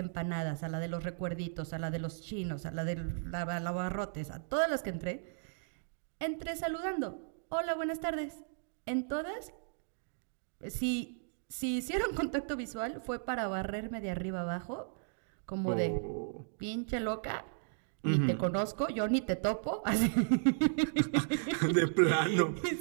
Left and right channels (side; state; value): left; silent; digital silence